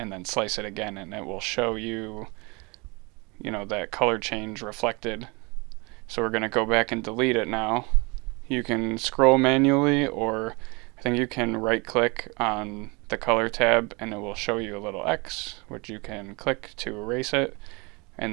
then slice it again, and it will show you that color change reflected. So we're going to go back and delete it now. You can scroll manually, or I think you can right click on the color tab and it will show you a little X, which you can click to erase it,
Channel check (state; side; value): quieter; left; 28.0 dB